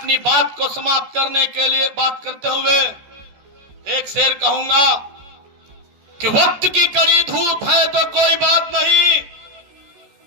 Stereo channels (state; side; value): late; left; 14 ms